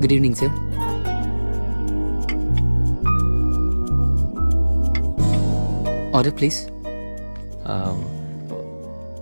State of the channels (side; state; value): both; inverted; correlation -1.00